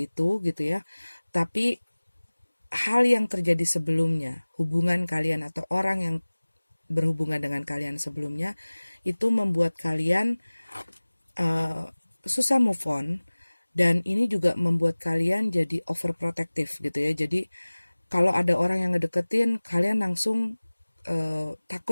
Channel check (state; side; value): inverted; both; correlation -1.00